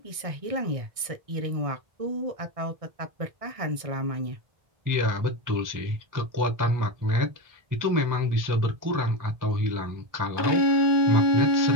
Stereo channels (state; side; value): late; left; 1.6 ms